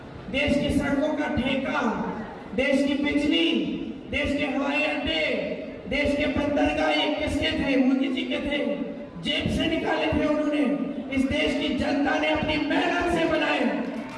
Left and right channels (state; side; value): identical; both; correlation 1.00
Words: देश की सड़कों का ठेका, देश की बिजली, देश के हवाई अड्डे, देश के बंदरगाह ये किसके थे? मोदी जी के थे। जेब से निकाले थे उन्होंने। इस देश की जनता ने अपनी मेहनत से बनाए,